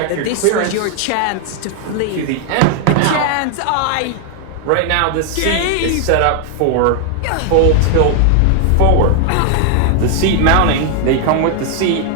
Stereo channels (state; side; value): different; both; correlation 0.00